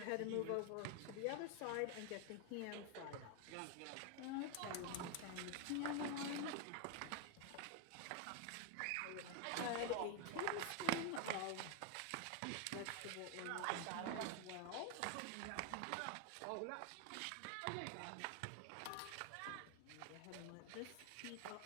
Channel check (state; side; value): different; both; correlation 0.01